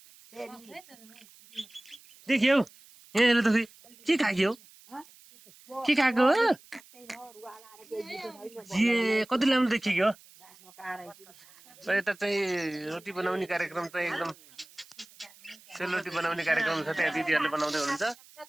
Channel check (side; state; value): right; noise; hiss, 24 dB below the sound